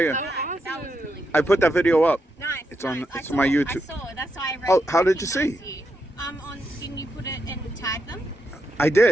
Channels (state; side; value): normal; both; correlation 0.83